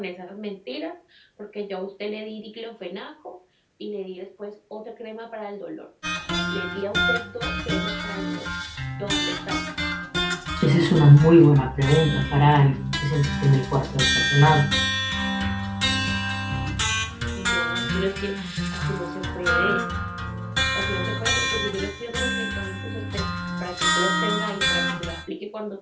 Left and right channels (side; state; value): both; identical; correlation 1.00